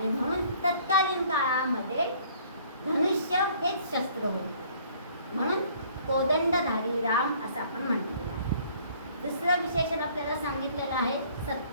म्हणून तत्कालीन काळामध्ये धनुष्य हेच शस्त्र होते. म्हणून कोदंडधारी राम असं आपण म्हटलेलं आहे. दुसरं विशेषण आपल्याला सांगितलेलं आहे.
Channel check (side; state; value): both; inverted; correlation -0.57